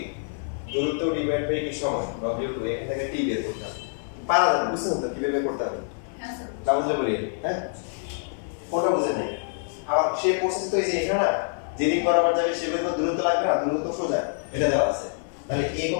দূরত্ব ডিভাইড বাই কি সময় W2, এখান থেকে T বের করতে হবে, পারা যাবে বুঝছেন তো কিভাবে বের করতে হবে, হ্যাঁ স্যার না বুঝলে বলি হ্যাঁ কোনটা বুঝেন নাই, আবার সেই প্রসেস তো এই যে এখানে না যেদিক বরাবর যাবে সেভাবে তো দূরত্ব লাগবে না, দূরত্ব সোজা এটা দেওয়া আছে, তাহলে A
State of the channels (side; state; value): right; silent; 61 dB below the other